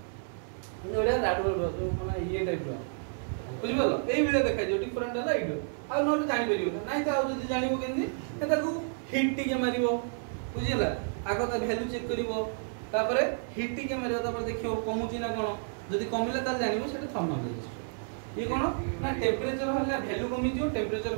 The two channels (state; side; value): silent; left; digital silence